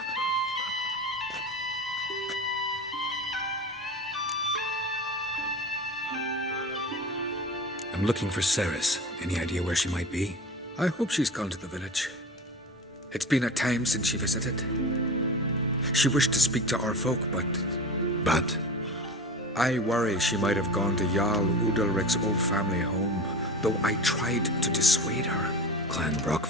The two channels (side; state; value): both; normal; correlation 0.32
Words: I'm looking for Ceres. Any idea where she might be? I hope she's gone to the village. It's been a time since she visited. She wished to speak to our folk, but... But? I worry she might have gone to Jarl Udalric's old family home, though I tried to dissuade her. Clan